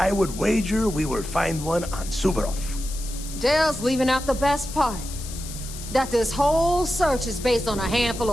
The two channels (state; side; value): noise; left; hiss, 12 dB below the sound